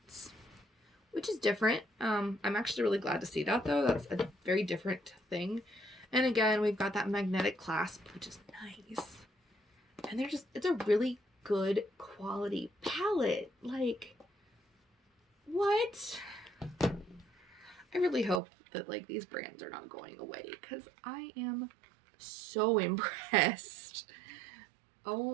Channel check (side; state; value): left; drops out; at 18.4 s